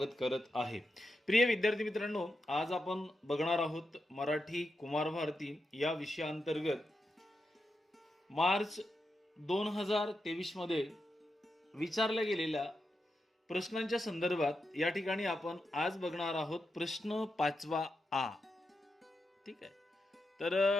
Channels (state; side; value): normal; both; correlation 0.87